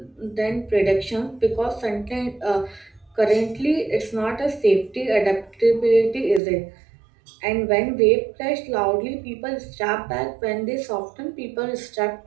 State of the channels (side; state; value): left; drops out; at 6.4 s